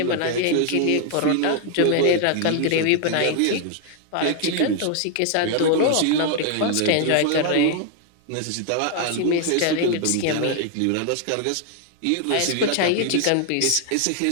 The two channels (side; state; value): both; different; correlation 0.00